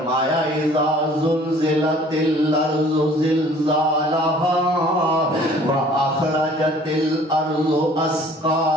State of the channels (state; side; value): normal; both; correlation 0.53